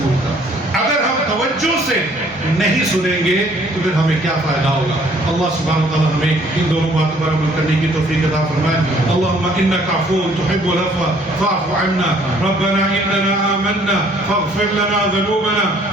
کا، اگر ہم توجہ سے نہیں سنیں گے تو پھر ہمیں کیا فائدہ ہوگا؟ اللہ سبحانہ وتعالی ہمیں ان دونوں باتوں پر عمل کرنے کی توفیق عطا فرمائے۔ اللهم انك عفو تحب العفو فاعف عنا ربنا اننا آمنا فاغفر لنا ذنوبنا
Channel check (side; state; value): both; normal; correlation 0.60